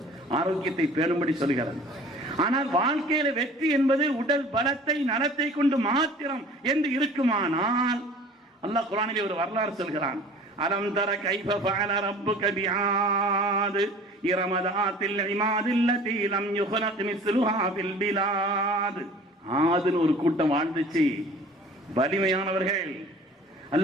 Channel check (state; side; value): normal; both; correlation 0.46